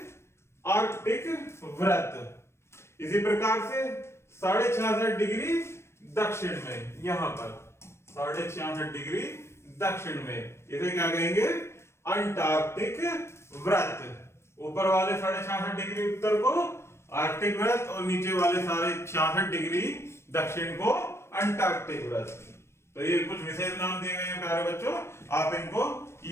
आर्कटिक वृत्त। इसी प्रकार से 66.5 डिग्री दक्षिण में, यहां पर 66.5 डिग्री दक्षिण में, इसे क्या कहेंगे? अंटार्कटिक वृत्त। ऊपर वाले 66.5 डिग्री उत्तर को आर्कटिक वृत्त और नीचे वाले 66.5 डिग्री दक्षिण को अंटार्कटिक वृत्त। तो ये कुछ विशेष नाम दिए गए हैं प्यारे बच्चों, आप इनको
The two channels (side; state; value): right; late; 0.13 ms